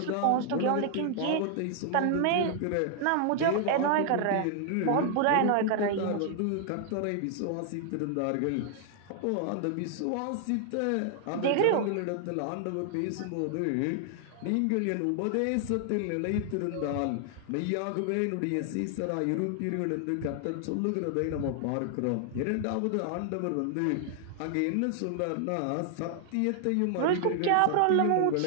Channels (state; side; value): different; both; correlation 0.00